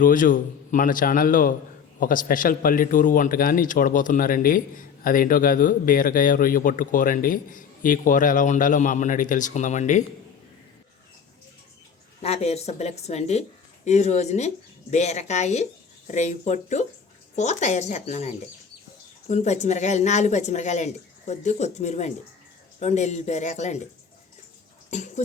మన ఛానల్లో ఒక స్పెషల్ పల్లెటూరు వంటకాన్ని చూడబోతున్నారండి. అదేంటో కాదు, బీరకాయ రొయ్య పొట్టు కూర అండి. ఈ కూర ఎలా ఉండాలో మా అమ్మని అడిగి తెలుసుకుందామండి. నా పేరు సుబ్బలక్ష్మి అండి. ఈ రోజుని బీరకాయ రొయ్య పొట్టు కూర తయారు చేస్తున్నానండి. కొన్ని పచ్చిమిరకాయలు, 4 పచ్చిమిరకాయలు అండి, కొద్ది కొత్తిమీర అండి, 2 ఎల్లుల్లిపాయ రేకలు అండి,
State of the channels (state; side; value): quieter; right; 6.8 dB